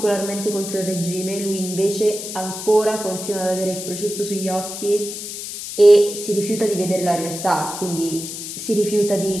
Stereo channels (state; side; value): noise; left; hiss, 8 dB below the sound